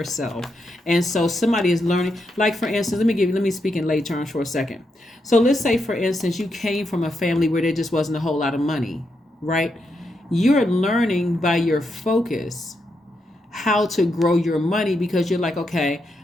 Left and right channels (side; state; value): both; normal; correlation 0.83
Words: self. And so somebody is learning, like for instance, let me speak in lay terms for a second. So let's say, for instance, you came from a family where there just wasn't a whole lot of money, right? You're learning by your focus how to grow your money, because you're like, okay,